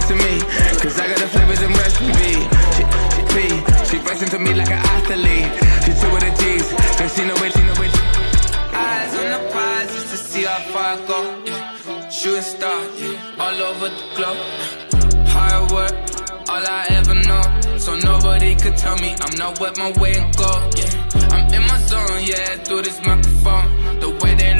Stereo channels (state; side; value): inverted; both; correlation -1.00